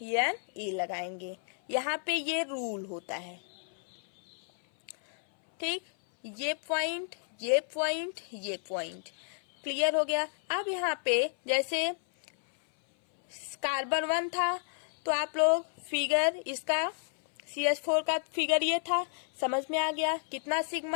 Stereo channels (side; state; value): right; silent; 57 dB below the other